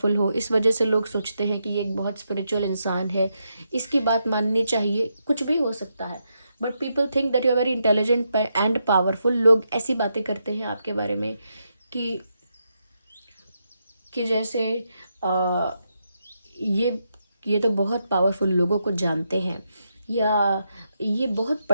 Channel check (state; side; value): inverted; both; correlation -0.83